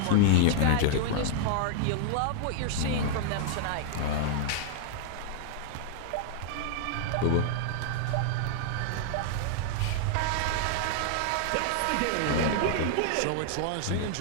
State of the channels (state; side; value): different; both; correlation -0.01